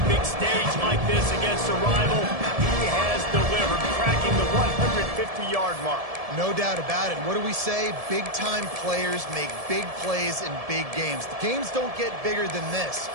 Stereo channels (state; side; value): late; left; 1.7 ms